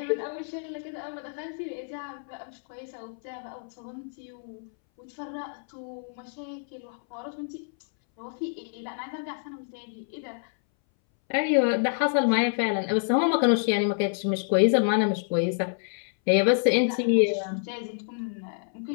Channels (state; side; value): silent; right; 59 dB below the other